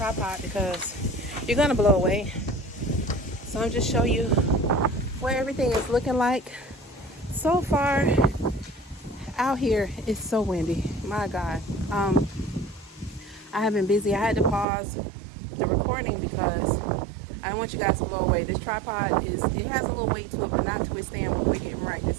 because you're gonna blow away. So I'm just showing you where everything is looking like. So far out here it's so windy. My God. I have been busy. I had to pause the recording because I don't want you guys to blow away. This tripod it has a little weight to it, but not to withstand what we're getting right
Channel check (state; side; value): drops out; left; at 14.7 s